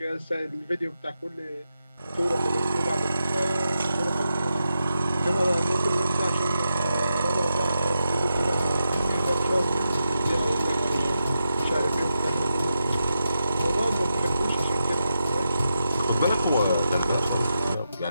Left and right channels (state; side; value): inverted; both; correlation -0.87